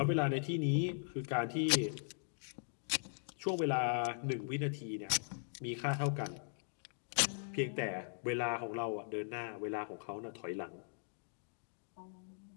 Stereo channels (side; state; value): right; silent; digital silence